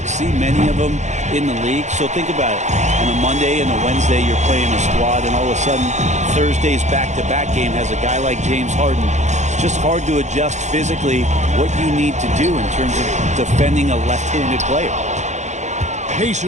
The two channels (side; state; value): left; late; 0.34 ms